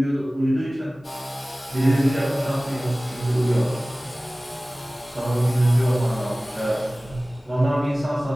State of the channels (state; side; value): normal; both; correlation 0.98